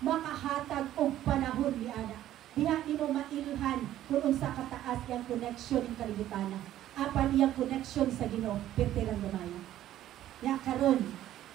og panahon ni ana. Diha nimo mailhan kung unsa kataas yang connection ng kalibutan. Apan iyang connection sa Ginoo, pertirang gamay. Ya karon,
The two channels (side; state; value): left; quieter; 12.8 dB